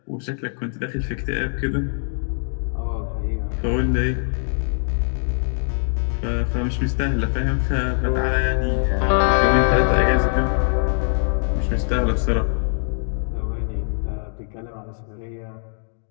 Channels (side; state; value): right; silent; 64 dB below the other